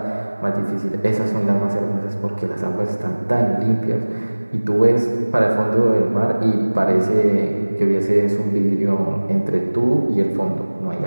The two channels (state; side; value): inverted; both; correlation -1.00